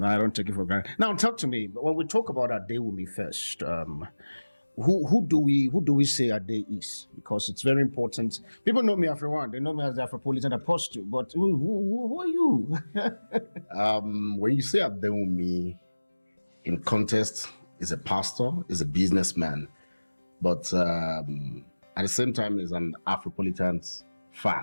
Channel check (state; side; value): inverted; both; correlation -1.00